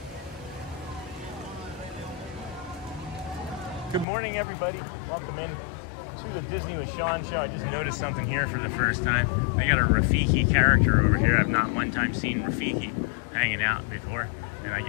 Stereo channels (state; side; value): drops out; right; at 4.0 s